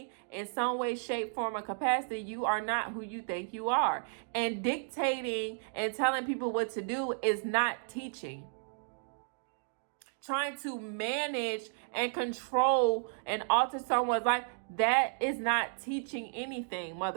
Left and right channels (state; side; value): silent; left; digital silence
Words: in some way, shape, form, or capacity, you are not who you think you are. And dictating and telling people what to do is not teaching. Trying to manage and control and alter someone's life, that is not teaching anything,